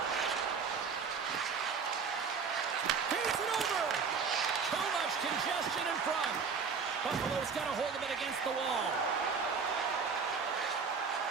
Feeds it over. Too much congestion in front. Buffalo's got a hold of it against the wall.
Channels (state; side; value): quieter; left; 5.6 dB